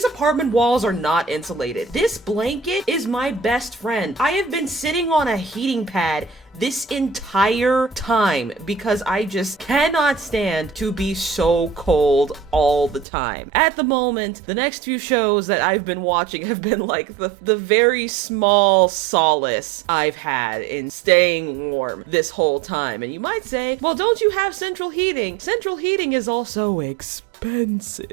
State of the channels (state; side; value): drops out; left; at 13.1 s